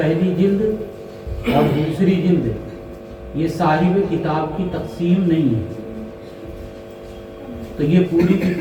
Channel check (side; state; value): both; identical; correlation 1.00